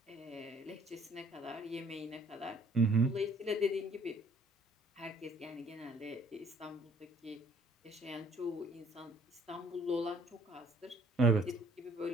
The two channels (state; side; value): normal; both; correlation 0.58